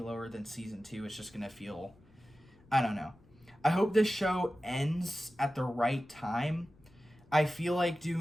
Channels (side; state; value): left; noise; rumble, 28 dB below the sound